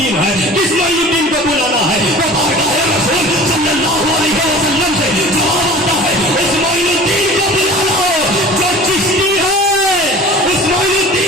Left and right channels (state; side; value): normal; both; correlation 0.42